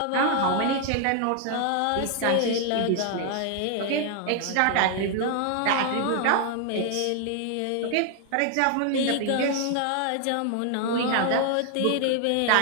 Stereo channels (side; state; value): both; different; correlation 0.00